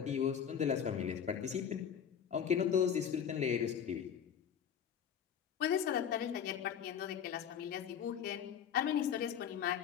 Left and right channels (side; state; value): right; quieter; 8.3 dB